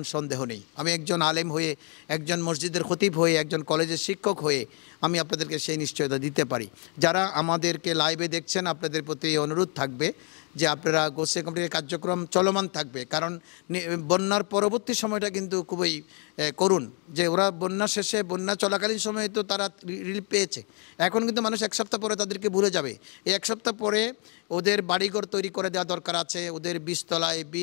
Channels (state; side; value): quieter; right; 37.4 dB